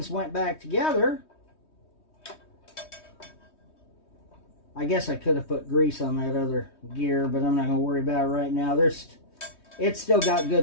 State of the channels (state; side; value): late; right; 3.2 ms